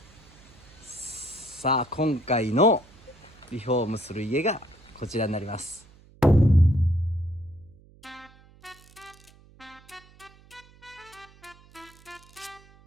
さあ今回のリフォームする家がこちらになります。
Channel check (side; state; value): right; noise; hum, 26 dB below the sound